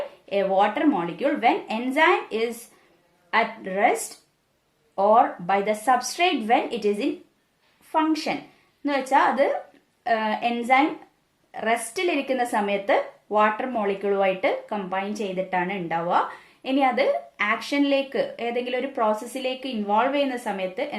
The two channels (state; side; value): identical; both; correlation 1.00